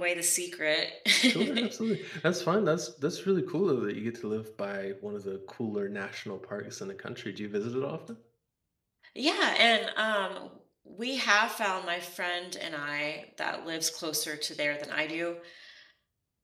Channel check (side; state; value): both; identical; correlation 1.00